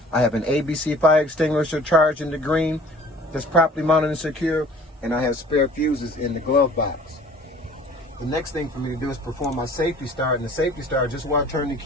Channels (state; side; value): normal; both; correlation 0.49